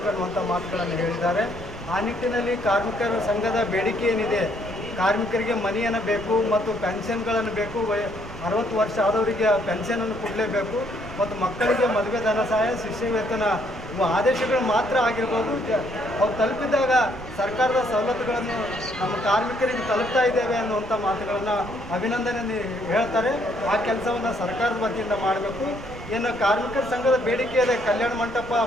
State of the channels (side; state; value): right; noise; rumble, 14 dB below the sound